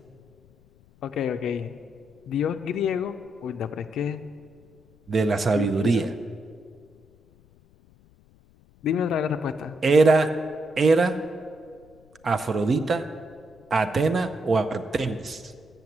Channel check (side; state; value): left; noise; rumble, 29 dB below the sound